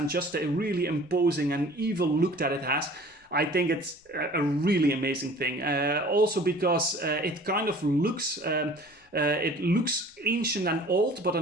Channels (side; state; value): both; normal; correlation 0.48